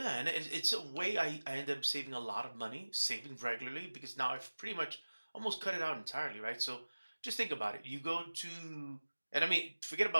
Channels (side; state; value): both; inverted; correlation -1.00